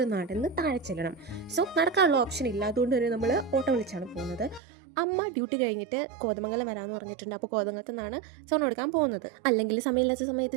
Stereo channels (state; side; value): drops out; left; at 4.6 s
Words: നടന്ന് താഴെ ചെല്ലണം. സോ നടക്കാനുള്ള ഓപ്ഷൻ ഇല്ല. അതുകൊണ്ട് തന്നെ നമ്മൾ ഓട്ടോ വിളിച്ചാണ് പോകുന്നത്. അമ്മ ഡ്യൂട്ടി കഴിഞ്ഞിട്ട് കോതമംഗലം വരാമെന്ന് പറഞ്ഞിട്ടുണ്ട്. അപ്പോൾ കോതമംഗലത്ത് നിന്നാണ് സ്വർണ്ണം എടുക്കാൻ പോകുന്നത്. അല്ലെങ്കിൽ സമയമില്ലാത്ത